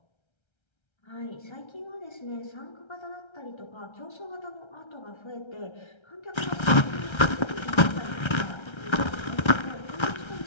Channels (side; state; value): right; late; 1.3 ms